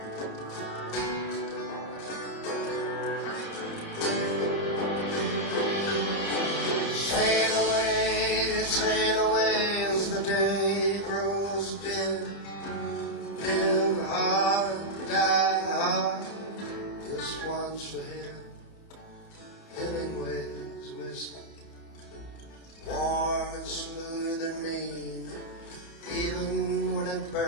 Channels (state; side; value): late; right; 30 ms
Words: Sail away as the day grows dim. Live hard, die hard. This one's for him. Hemingway's whiskey, warm and smooth and mean. Even when it